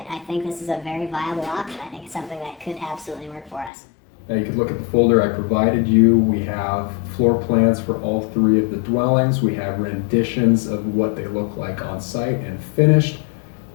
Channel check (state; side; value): drops out; right; at 3.7 s